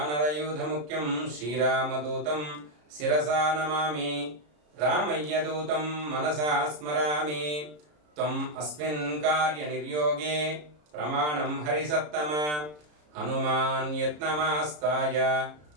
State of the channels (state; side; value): late; left; 33 ms